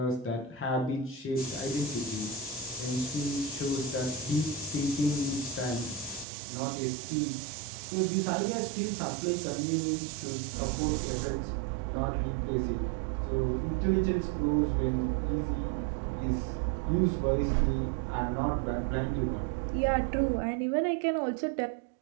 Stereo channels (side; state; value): left; drops out; at 6.2 s